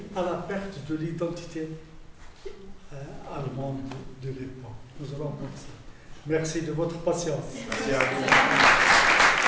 à la perte de l'identité allemande de l'époque. Nous allons voir ça. Merci de votre patience. Merci à vous.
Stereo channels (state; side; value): identical; both; correlation 1.00